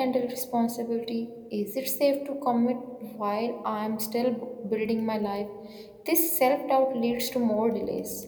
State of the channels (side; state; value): both; identical; correlation 1.00